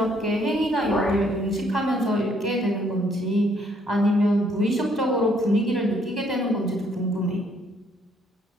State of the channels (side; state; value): both; normal; correlation 0.67